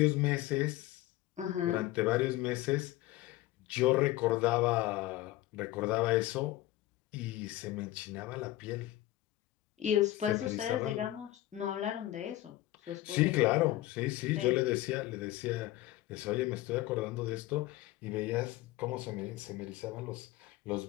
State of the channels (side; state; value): right; quieter; 16.1 dB